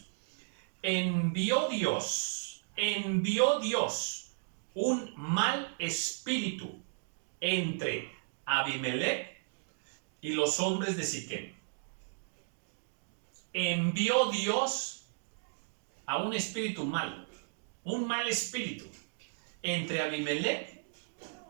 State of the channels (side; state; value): left; silent; digital silence